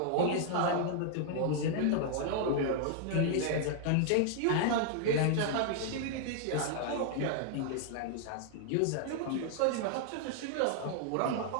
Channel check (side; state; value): both; different; correlation 0.00